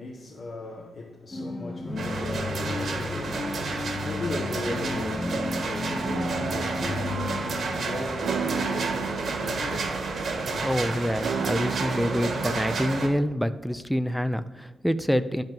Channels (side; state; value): both; normal; correlation 0.87